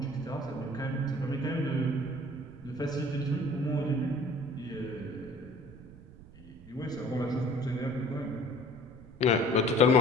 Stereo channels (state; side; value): noise; right; rumble, 19 dB below the sound